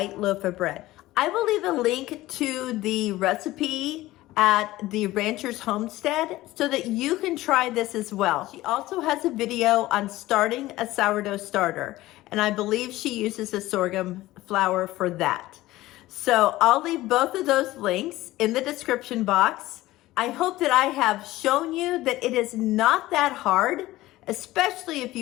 loaf of bread. I will leave a link to the recipe at the Ranchers Homestead so that you can try this as well. She also has a video on starting a sourdough starter, and I believe she uses a sorghum flour for that. So I'll leave both of those links in the description box. I hope that I have shown you that it is not that hard, especially if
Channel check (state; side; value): quieter; right; 17.1 dB